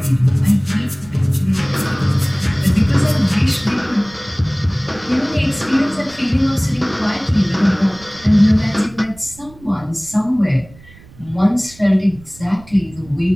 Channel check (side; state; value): right; noise; rumble, 23 dB below the sound